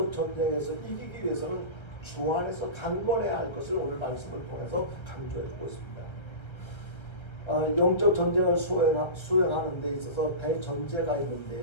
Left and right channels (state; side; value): late; right; 1.3 ms